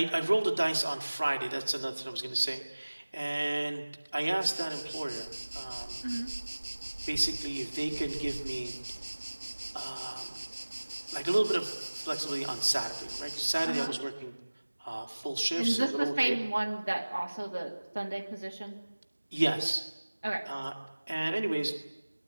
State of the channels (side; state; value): both; inverted; correlation -1.00